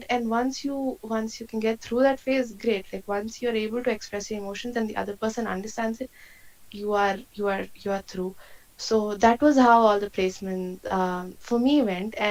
and once you can get through that phase, great. Like once you're able to express your emotions and the other person understands it, you are through. So that was how all the placement for me went,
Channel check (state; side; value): identical; both; correlation 1.00